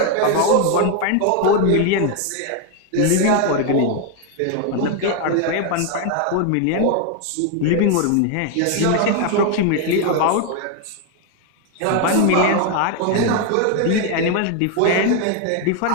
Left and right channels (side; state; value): both; different; correlation 0.01